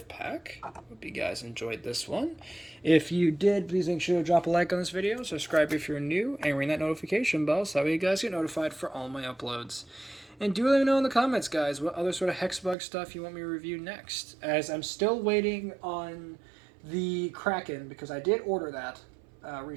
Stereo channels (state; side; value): drops out; left; at 12.8 s